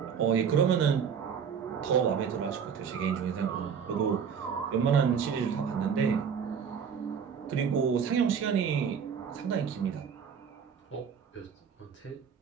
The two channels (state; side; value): quieter; left; 7.0 dB